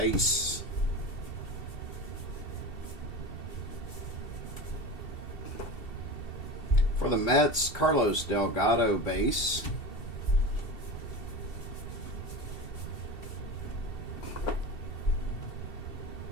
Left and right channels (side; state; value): right; late; 2.7 ms